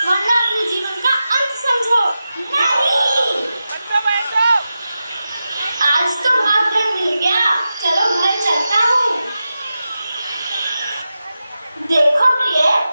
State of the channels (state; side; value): inverted; both; correlation -0.92